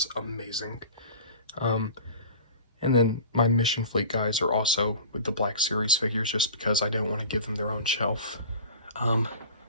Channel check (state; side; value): inverted; both; correlation -0.39